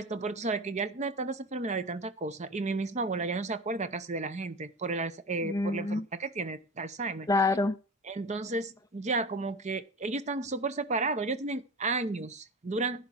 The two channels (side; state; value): both; normal; correlation 0.29